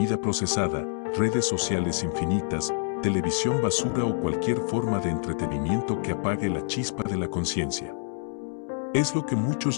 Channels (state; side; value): silent; right; 60 dB below the other